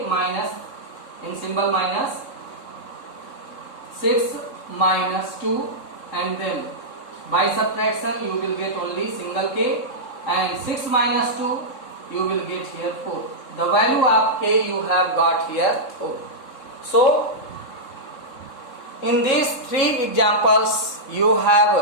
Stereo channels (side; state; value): right; late; 3.7 ms